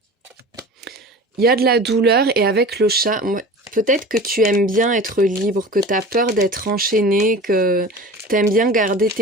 Il y a de la douleur et avec le chat, peut-être que tu aimes bien être libre, que tu as peur d'être enchaîné, que tu aimes bien garder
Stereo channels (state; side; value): normal; both; correlation 0.37